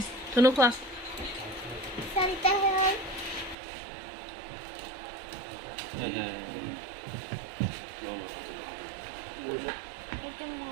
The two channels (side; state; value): left; drops out; at 3.6 s